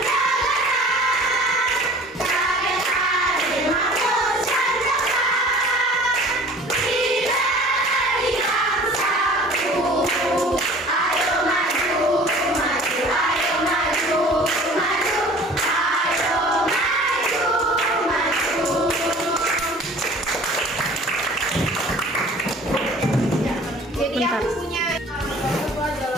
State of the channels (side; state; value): both; normal; correlation 0.47